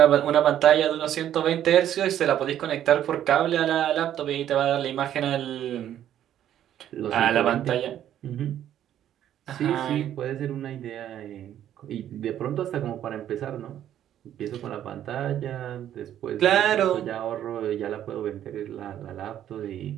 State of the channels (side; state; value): left; quieter; 11.1 dB